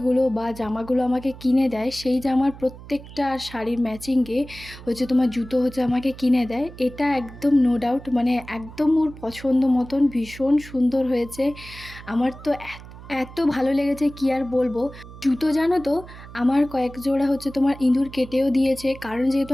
বা জামাগুলো আমাকে কিনে দেয়, সেই জামার প্রত্যেকটা শাড়ির ম্যাচিংয়ে তোমার জুতো আমাকে কিনে দেয়। এটা একদম নো ডাউট, মানে একদম ওর পছন্দ মতন ভীষণ সুন্দর হয়েছে। আমার তো এত ভালো লেগেছে, কি আর বলবো। জুতো জানো তো, আমার কয়েক জোড়া তোমার ইঁদুর কেটেও দিয়েছে, কারণ যেহেতু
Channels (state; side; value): noise; right; hum, 16 dB below the sound